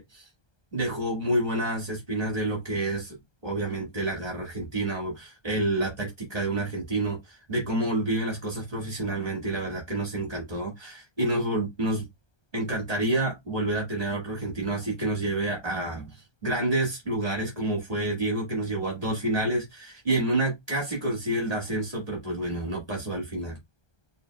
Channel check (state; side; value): late; right; 1.2 ms